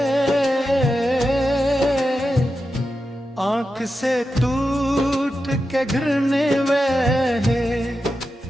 आँख से टूट के गिरने वहे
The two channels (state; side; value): normal; both; correlation 0.90